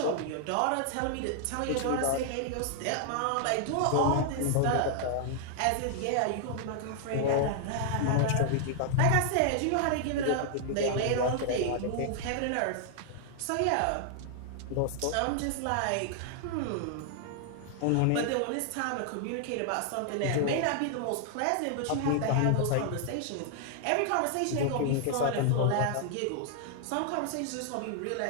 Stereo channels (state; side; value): different; both; correlation 0.00